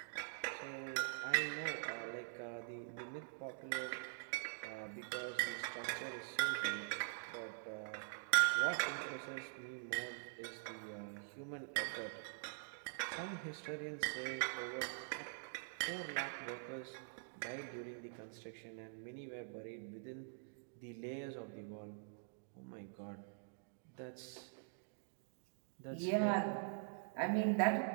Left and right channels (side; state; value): left; silent; digital silence